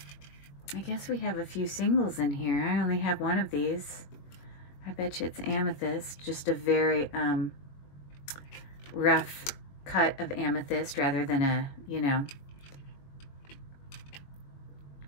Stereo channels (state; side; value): late; right; 21 ms